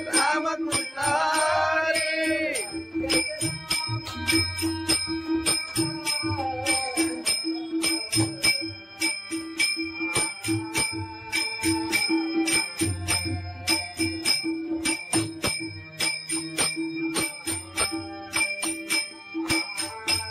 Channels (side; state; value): both; identical; correlation 1.00